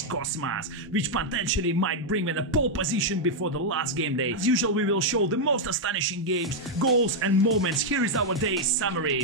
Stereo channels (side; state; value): both; normal; correlation -0.02